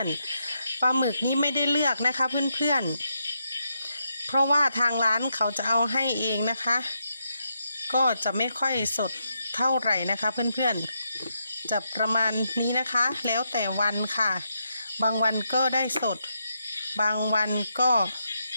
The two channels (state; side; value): inverted; both; correlation -0.81